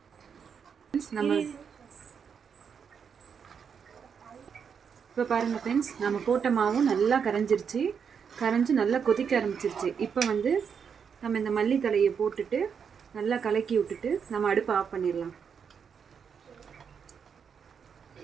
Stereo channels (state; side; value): quieter; left; 6.8 dB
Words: நம்ம இப்போ பாருங்கள் ஃப்ரெண்ட்ஸ், நம்ம போட்ட மாவும் நல்லா கரைஞ்சி நல்லா கொதிக்க ஆரம்பிச்சிருச்சு. இப்போ நம்ம இந்த மல்லித்தலையை போட்டுட்டு நல்லா கலக்கி விட்டுட்டு நம்ம அடுப்பை ஆஃப் பண்ணிடலாம்.